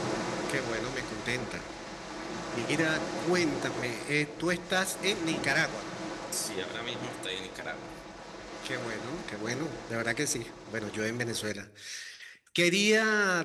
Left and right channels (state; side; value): identical; both; correlation 1.00